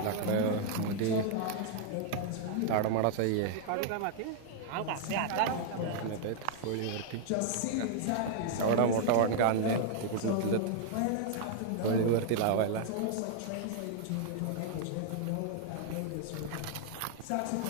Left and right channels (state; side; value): different; both; correlation 0.00